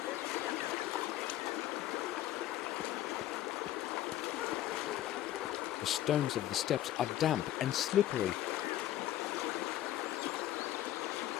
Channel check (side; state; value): right; quieter; 13.3 dB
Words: The stones of the steps are damp and slippery.